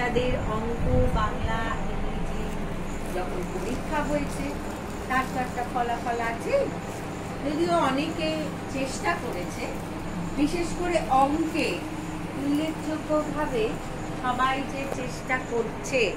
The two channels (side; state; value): both; identical; correlation 1.00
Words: অঙ্ক, বাংলা, ইংরেজি যখন পরীক্ষা হয়েছে তার তো একটা ফলাফল আছে। যদিও অনেকে চেষ্টা করেছে, বিশেষ করে অঙ্কে উল্লেখযোগ্যভাবে সবাই যে চেষ্টা করছে